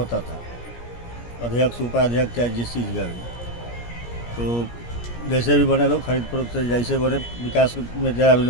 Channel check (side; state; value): right; late; 17 ms